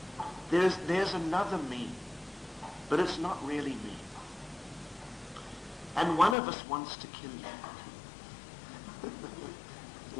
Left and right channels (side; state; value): right; drops out; at 6.4 s